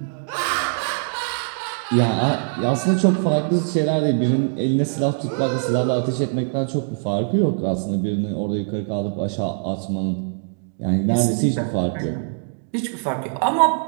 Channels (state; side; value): silent; left; digital silence